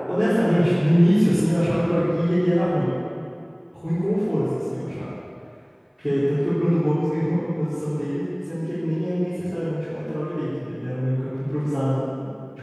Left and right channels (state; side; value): identical; both; correlation 1.00